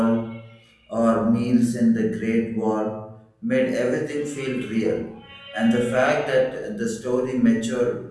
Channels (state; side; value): identical; both; correlation 1.00